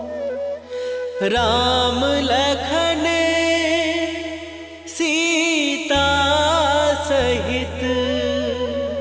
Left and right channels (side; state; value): both; identical; correlation 1.00